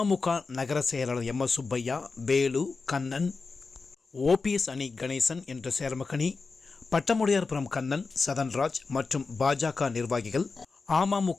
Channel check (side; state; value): right; quieter; 4.3 dB